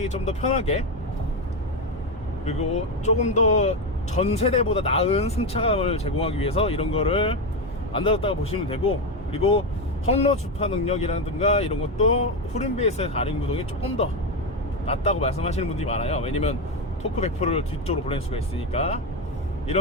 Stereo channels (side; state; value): both; normal; correlation 0.11